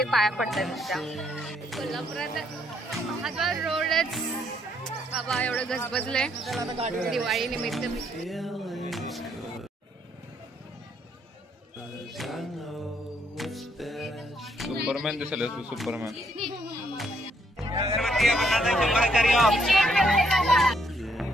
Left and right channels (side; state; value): both; normal; correlation 0.71